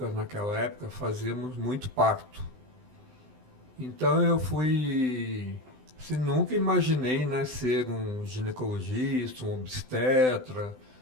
naquela época, fazíamos muito parto. Então eu fui... Assim, nunca imaginei, né, ser um ginecologista, um obstetra.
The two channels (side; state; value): left; late; 20 ms